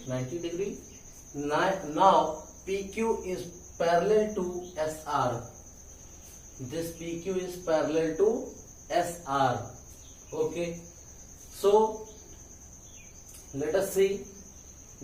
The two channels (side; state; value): both; identical; correlation 1.00